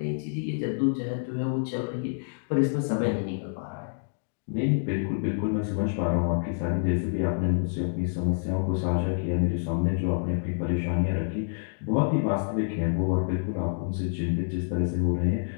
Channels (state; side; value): silent; right; digital silence